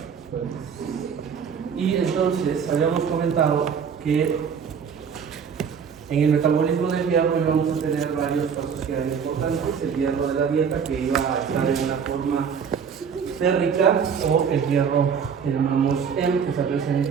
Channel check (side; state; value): left; quieter; 6.8 dB